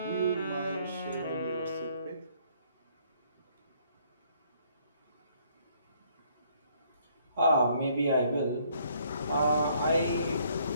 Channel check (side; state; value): both; inverted; correlation -0.65